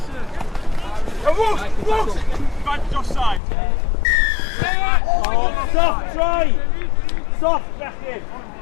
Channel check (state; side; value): drops out; right; at 3.4 s